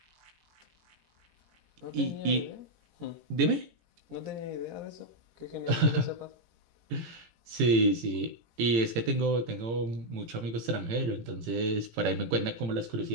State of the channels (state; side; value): late; left; 17 ms